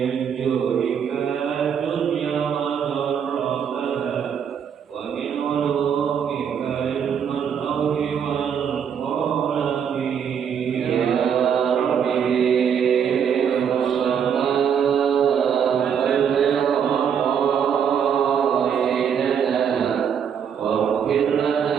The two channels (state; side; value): quieter; left; 7.7 dB